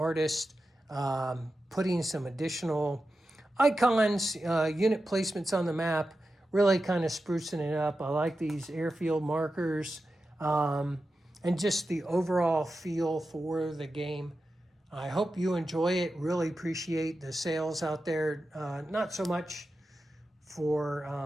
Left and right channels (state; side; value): normal; both; correlation 0.91